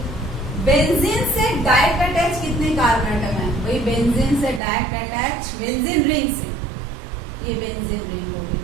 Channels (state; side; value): drops out; left; at 4.6 s